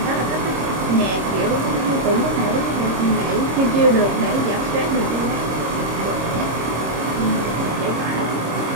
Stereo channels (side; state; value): left; late; 26 ms